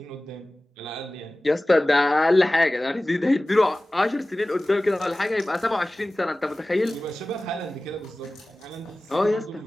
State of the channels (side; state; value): both; normal; correlation 0.97